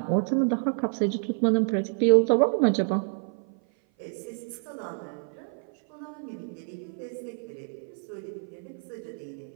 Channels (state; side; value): silent; left; 55 dB below the other